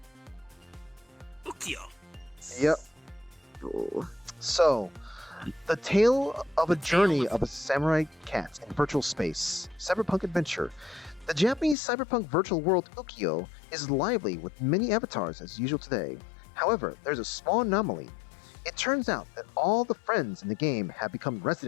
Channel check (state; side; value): drops out; right; at 11.8 s